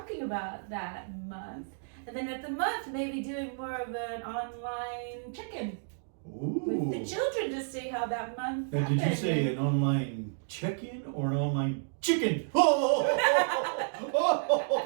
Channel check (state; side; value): silent; left; digital silence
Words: about that month. And then at the month, maybe doing more of an online check-in with the children to see how that month Now, happened. did you say an online check-in or an online chicken?